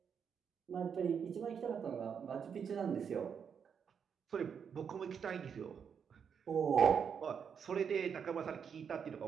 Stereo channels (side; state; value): left; quieter; 7.1 dB